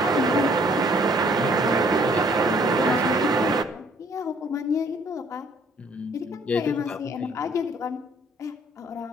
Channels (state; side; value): normal; both; correlation 0.61